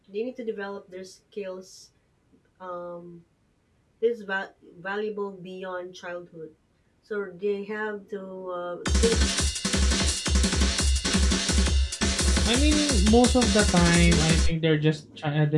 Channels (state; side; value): identical; both; correlation 1.00